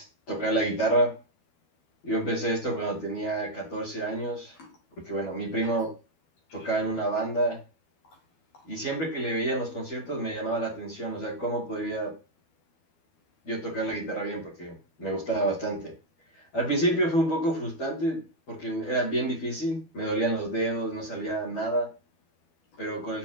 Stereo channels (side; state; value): right; late; 12 ms